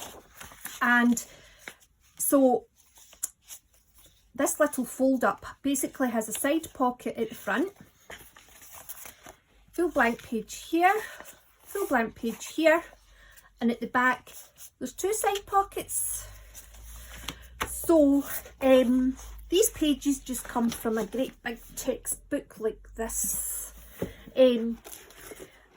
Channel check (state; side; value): identical; both; correlation 1.00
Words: and so this little fold up basically has a side pocket at the front, full blank page here, full blank page here, and at the back there's 2 side pockets. So these pages just come from a great big textbook like this.